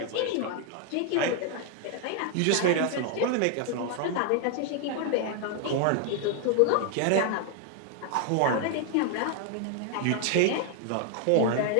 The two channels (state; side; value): different; both; correlation 0.00